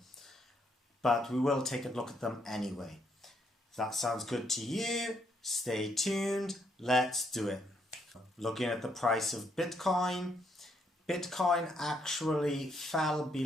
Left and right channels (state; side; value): normal; both; correlation 0.74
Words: But we will take a look at them anyway. If that sounds good to you, stay tuned, let's do it. Looking at the price of Bitcoin, Bitcoin actually fell